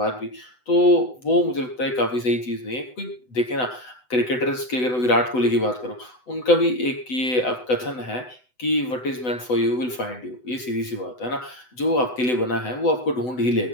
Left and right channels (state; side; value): late; right; 8.0 ms